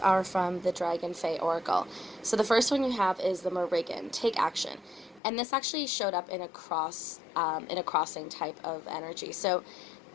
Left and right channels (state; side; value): drops out; right; at 5.2 s